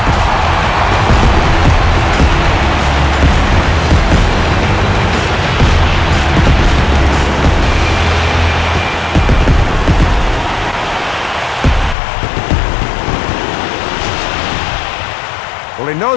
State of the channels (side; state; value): right; drops out; at 12.0 s